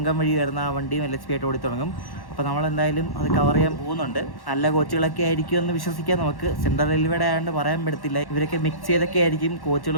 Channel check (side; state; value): right; late; 1.1 ms